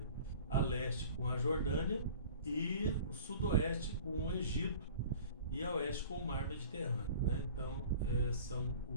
A leste com a Jordânia e o sudoeste com o Egito e a oeste com o mar Mediterrâneo, né? Então são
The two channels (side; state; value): both; inverted; correlation -0.44